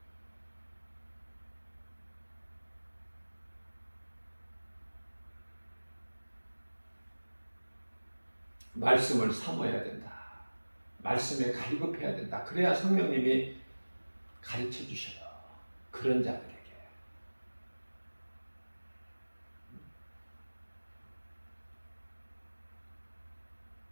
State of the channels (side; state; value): both; inverted; correlation -1.00